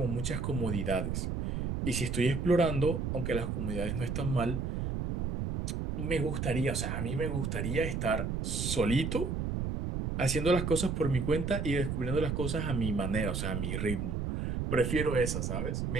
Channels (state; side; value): noise; right; rumble, 1 dB below the sound